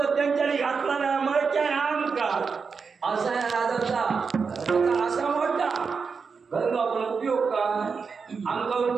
त्यांच्यानी घातला ना मरच्या आमका असा आहे राजाचा असा मोठा घर आपण उपयोग काय आमका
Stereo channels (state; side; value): quieter; left; 5.3 dB